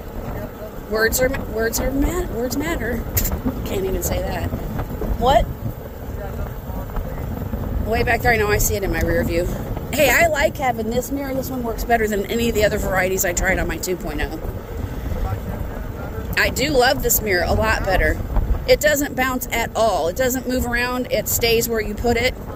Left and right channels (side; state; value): both; identical; correlation 1.00